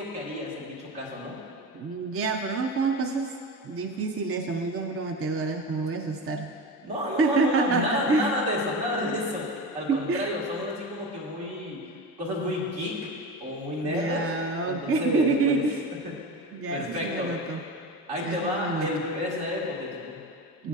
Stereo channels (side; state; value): both; normal; correlation 0.26